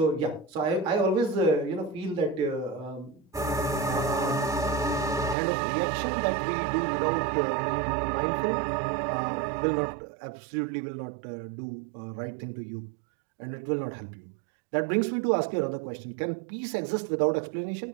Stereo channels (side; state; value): left; drops out; at 5.4 s